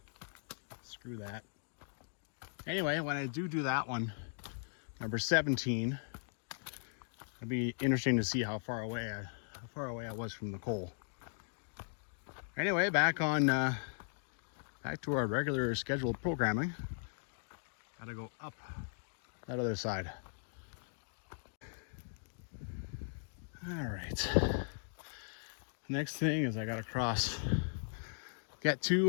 screw that. Anyway, when I do that one, number 17, it'll be interesting to see how far away I was from the coal. Anyway, back to our regular scheduled programming. Gotta go up that other side. All right. Next thing is I gotta get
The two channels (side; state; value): right; silent; digital silence